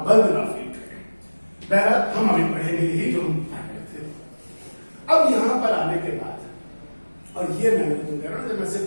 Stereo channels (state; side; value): inverted; both; correlation -1.00